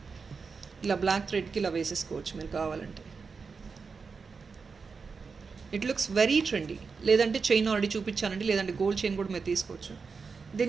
ఇలా బ్లాక్ థ్రెడ్కి ఇలా వేసేసుకోవచ్చు మీరు కావాలంటే. It looks very trendy. లేదంటే చైన్ ఆల్రెడీ చూపించానండి, లేదంటే గోల్డ్ చైన్ కూడా మీరు తీసుకోవచ్చు.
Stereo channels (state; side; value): quieter; left; 5.1 dB